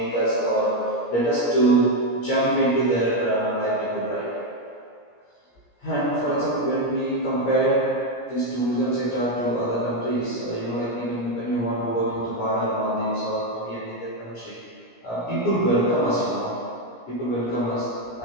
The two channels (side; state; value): right; late; 17 ms